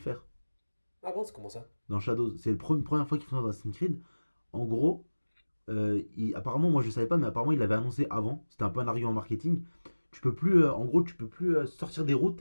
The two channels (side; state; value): both; inverted; correlation -1.00